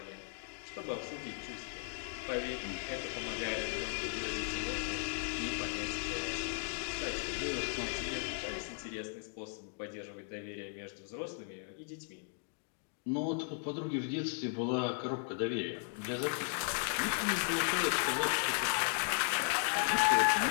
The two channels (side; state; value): right; silent; 53 dB below the other